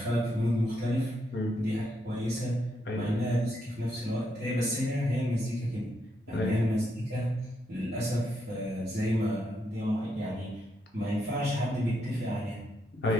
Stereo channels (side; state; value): both; normal; correlation 0.79